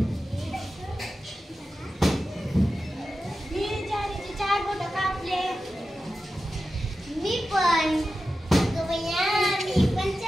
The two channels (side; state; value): both; normal; correlation 0.92